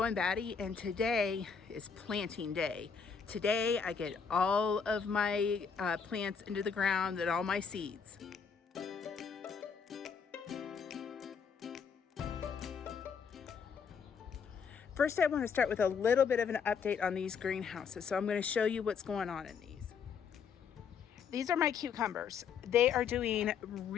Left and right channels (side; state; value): right; quieter; 6.3 dB